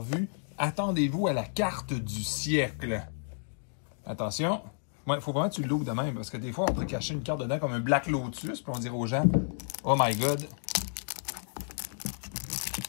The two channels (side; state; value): right; silent; digital silence